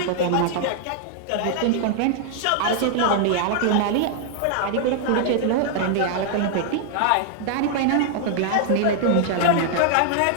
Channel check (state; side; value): different; both; correlation 0.00